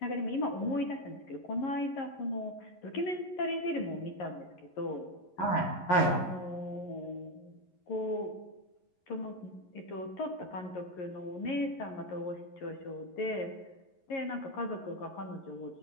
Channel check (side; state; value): right; late; 11 ms